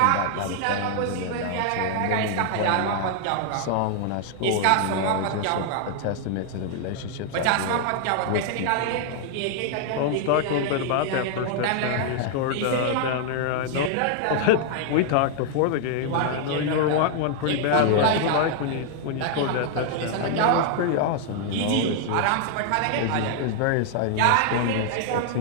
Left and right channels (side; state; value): both; different; correlation 0.00